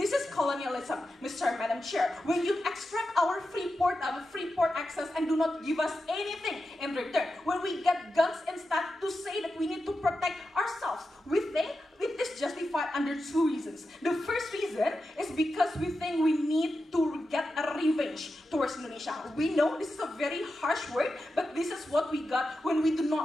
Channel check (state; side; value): normal; both; correlation 0.90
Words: is colonialism, Mr. and Madam Chair. When you extract our free port access and do not give us anything in return, when we get guns instead to say that we need to protect ourselves, we think it is justified under two reasons. The first reason is because we think we need to get a revenge towards Indonesia. We know this is a very harsh word, but this is what we got when we